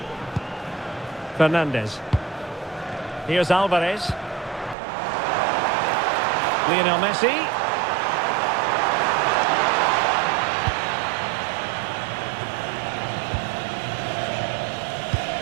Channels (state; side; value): drops out; left; at 4.8 s